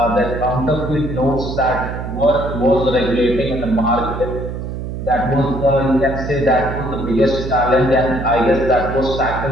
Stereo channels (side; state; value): right; noise; hum, 6 dB below the sound